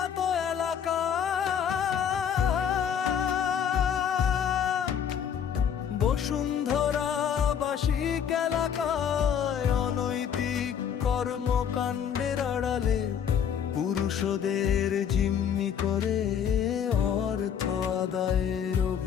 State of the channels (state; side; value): quieter; right; 8.3 dB